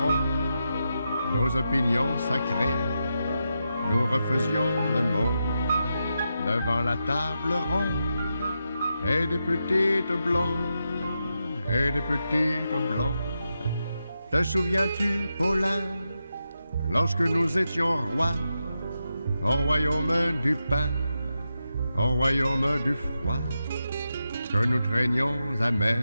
nos opinions sacrées. Nous refaisions le monde devant la table ronde, et des petites blondes, et des petites blondes. Te souviens-tu, Paulin, lorsque nous étions rois, au royaume du pain, au royaume du froid, que nous traînions amers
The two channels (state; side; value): inverted; both; correlation -0.87